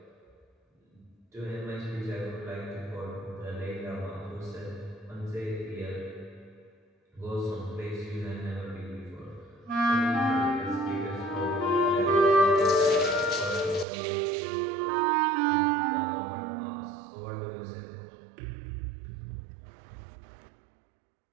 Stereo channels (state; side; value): drops out; left; at 13.9 s